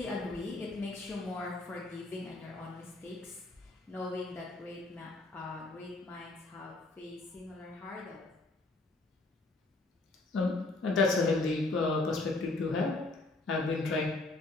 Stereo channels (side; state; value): right; quieter; 3.1 dB